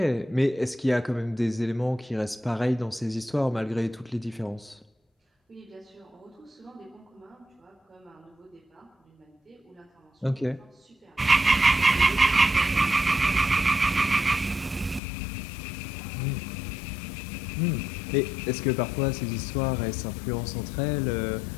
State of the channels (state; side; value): drops out; right; at 15.0 s